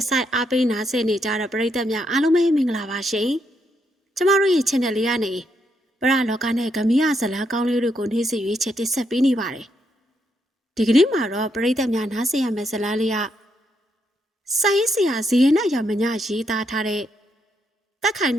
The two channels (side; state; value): both; normal; correlation 0.78